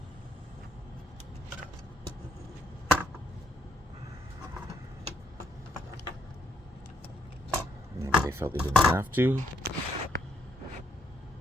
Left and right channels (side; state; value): both; normal; correlation 0.73